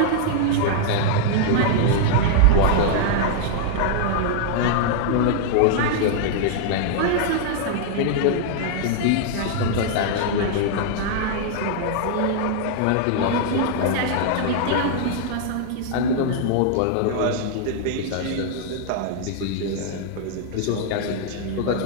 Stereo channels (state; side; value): different; both; correlation -0.01